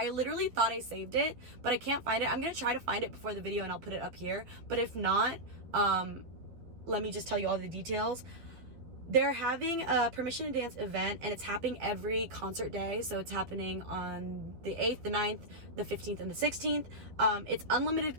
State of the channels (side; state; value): left; late; 12 ms